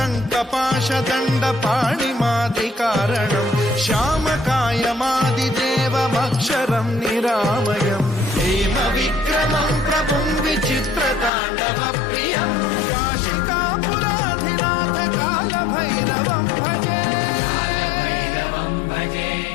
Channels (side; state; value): right; drops out; at 11.3 s